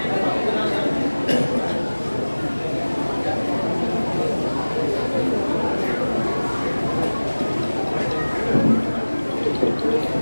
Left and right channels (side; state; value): both; inverted; correlation -1.00